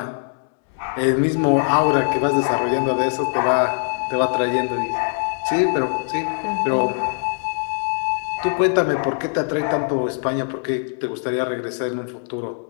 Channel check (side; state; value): right; silent; 64 dB below the other